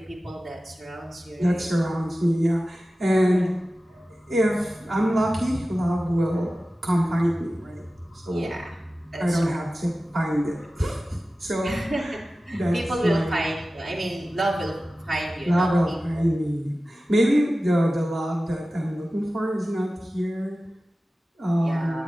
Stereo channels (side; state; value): both; normal; correlation 0.95